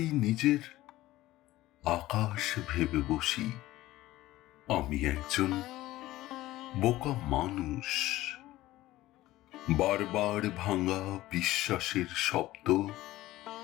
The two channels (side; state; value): right; quieter; 16.5 dB